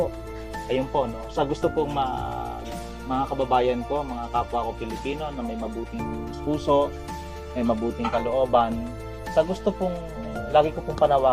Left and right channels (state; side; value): identical; both; correlation 1.00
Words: Ayun po, no? Sa gusto pong mga kababayan ko, mga kapwa ko Pilipino na may mabuting puso, may mabuting kalooban, sa gusto pong, lagi ko pong